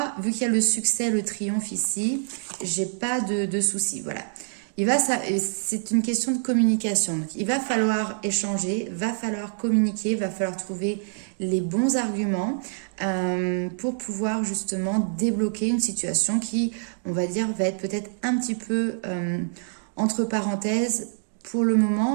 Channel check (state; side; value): silent; left; digital silence